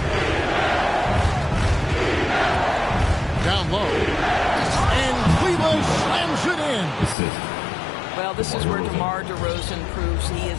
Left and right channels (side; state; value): right; drops out; at 7.2 s